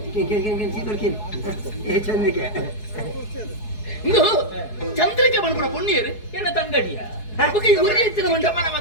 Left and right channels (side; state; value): right; late; 4.7 ms